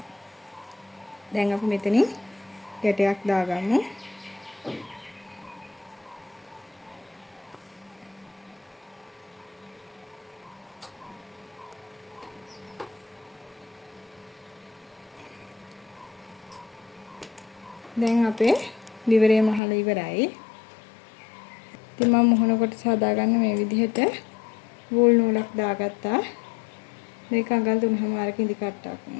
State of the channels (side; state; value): right; drops out; at 19.6 s